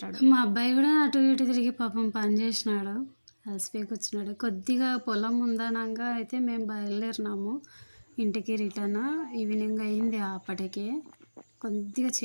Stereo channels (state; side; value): inverted; both; correlation -1.00